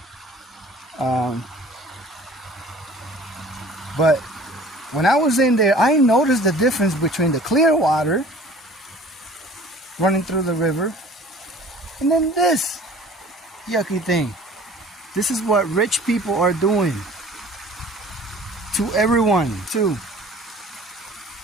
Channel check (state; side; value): normal; both; correlation 0.47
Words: But when I was in there, I noticed the difference between the clear water running through the river and then this yucky thing. This is what rich people are doing to everyone too.